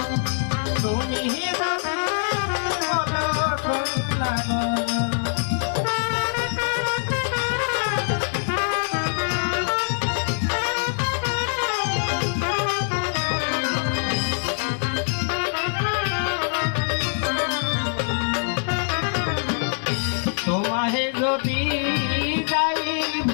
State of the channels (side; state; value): right; silent; digital silence